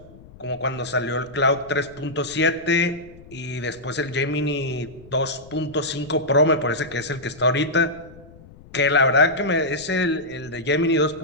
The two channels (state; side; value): noise; left; rumble, 22 dB below the sound